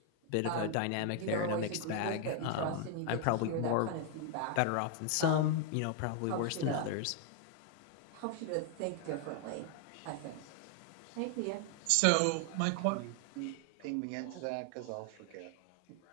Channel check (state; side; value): different; both; correlation 0.00